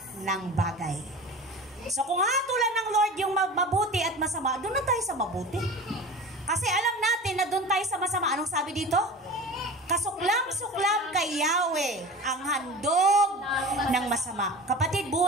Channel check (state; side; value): normal; both; correlation 0.35